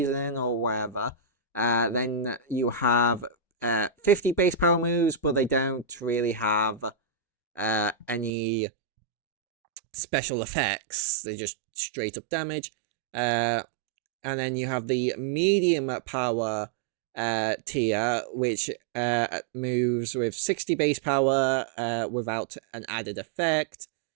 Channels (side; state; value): left; drops out; at 8.3 s